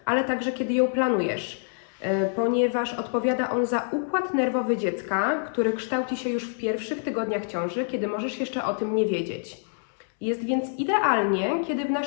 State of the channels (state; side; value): silent; right; 60 dB below the other